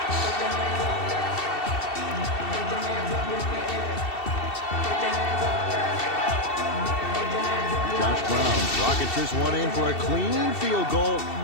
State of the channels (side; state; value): right; late; 2.7 ms